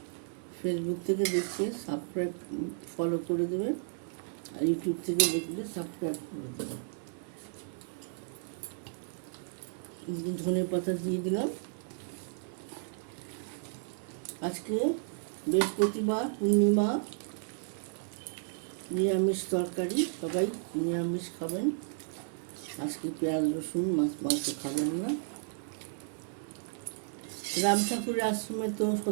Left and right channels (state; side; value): silent; left; 56 dB below the other